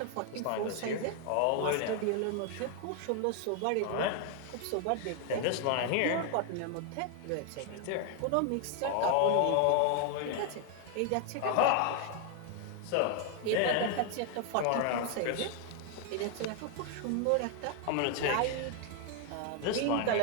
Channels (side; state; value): both; different; correlation 0.01